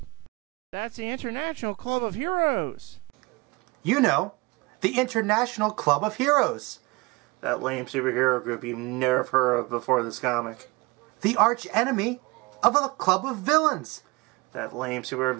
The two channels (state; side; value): quieter; left; 24.9 dB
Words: That's the International Club of Heroes. You know, the International Club of Heroes. That lame superhero group you've never heard of before this comic. The arch enemy of the Club of Villains. That lame super